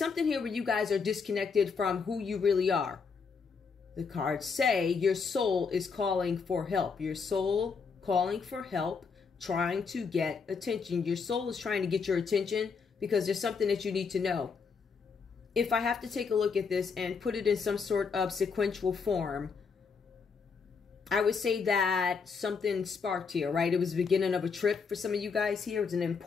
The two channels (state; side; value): quieter; right; 5.4 dB